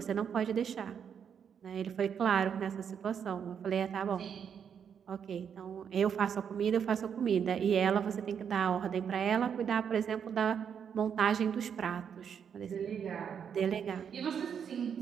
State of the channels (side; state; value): left; quieter; 7.6 dB